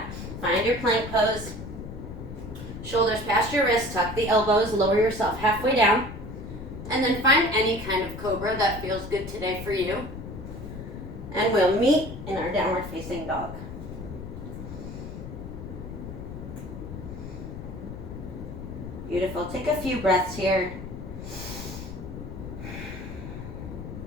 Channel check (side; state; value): left; noise; rumble, 10 dB below the sound